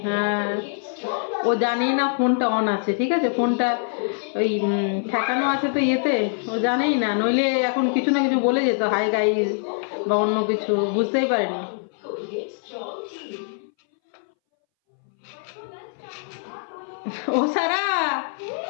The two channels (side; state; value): right; silent; 62 dB below the other